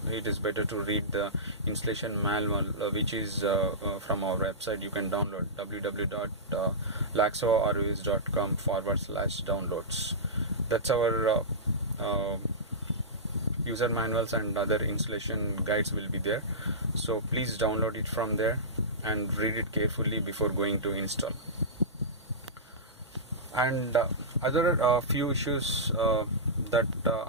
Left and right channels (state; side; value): normal; both; correlation -0.17